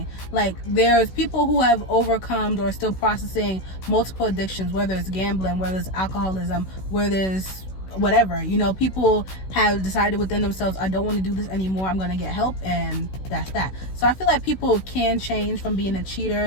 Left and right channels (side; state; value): right; late; 16 ms